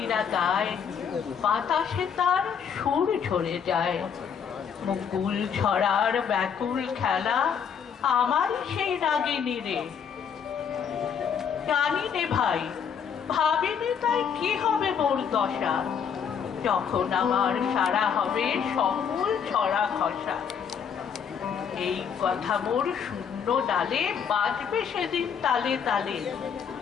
গায়, বাতাসে তার সুর ঝরে যায়। মুকুল ছড়ার ব্যাকুল খেলা আমার সেই রাগিনী রে। জানি নে ভাই, ভাবিনি তাই কি হবে মোর দশা, যখন আমার সারা হবে সকল ছড়া খসা। এই কথা মোর শূন্য ডালে বাজবে সেদিন তালে তালে।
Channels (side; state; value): right; quieter; 7.3 dB